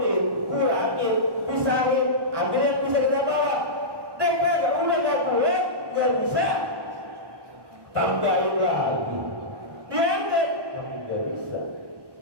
kurangin, pisahin, ambil yang bisa kita bawa. Dia udah gak kuat, gak bisa, tambahin lagi. Diangkat, tapi gak bisa.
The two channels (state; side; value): late; left; 1.2 ms